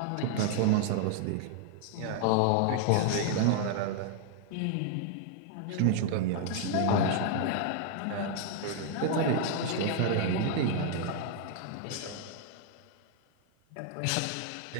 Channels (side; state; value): both; different; correlation 0.00